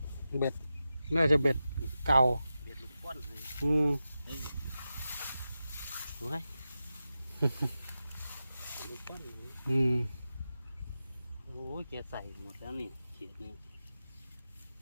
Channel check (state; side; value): inverted; both; correlation -0.92